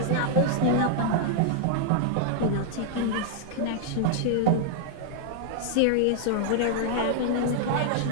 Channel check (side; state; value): both; different; correlation -0.01